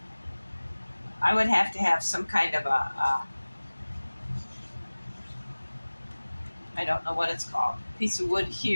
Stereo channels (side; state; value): both; inverted; correlation -1.00